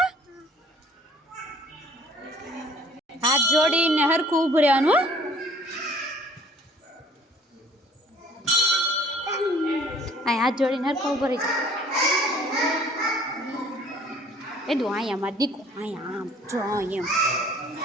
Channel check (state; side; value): normal; both; correlation 0.54